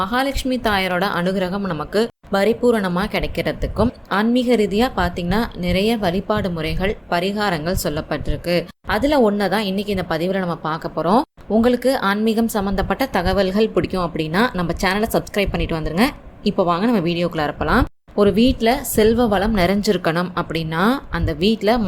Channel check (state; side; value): identical; both; correlation 1.00